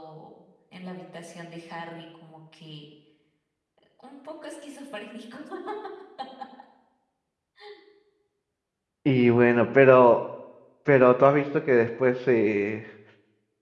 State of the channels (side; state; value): both; identical; correlation 1.00